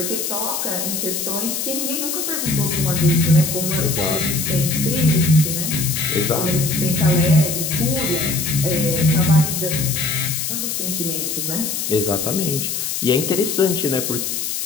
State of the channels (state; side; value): noise; left; hiss, 2 dB below the sound